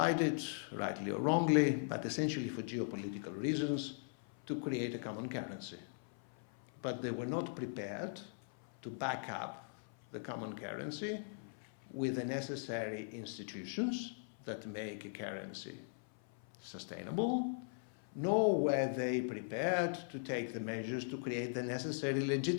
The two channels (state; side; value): silent; right; 51 dB below the other